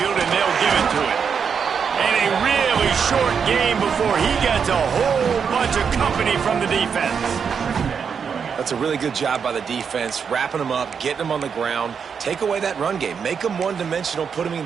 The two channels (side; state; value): left; quieter; 6.6 dB